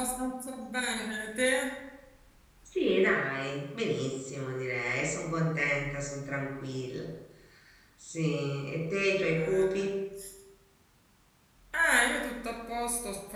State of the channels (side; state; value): both; identical; correlation 1.00